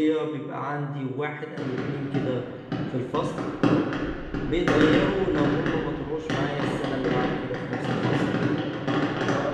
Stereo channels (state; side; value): identical; both; correlation 1.00